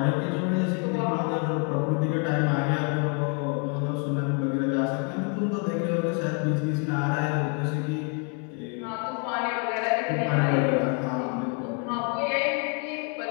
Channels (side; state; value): right; quieter; 38.7 dB